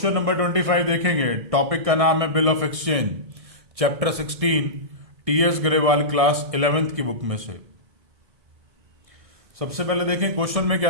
नंबर 25 देखेंगे। टॉपिक का नाम है bill of exchange, chapter 16, TS Grewal class 11th की बुक में से। सबसे पहले देखें क्वेश्चन में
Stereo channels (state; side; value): late; left; 1.6 ms